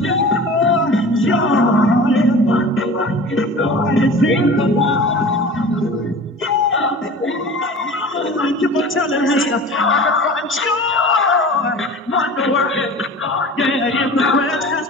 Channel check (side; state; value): both; normal; correlation 0.38